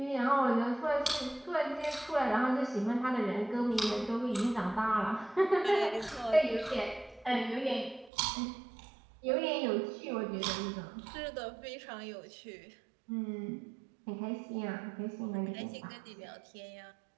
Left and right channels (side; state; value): left; drops out; at 8.1 s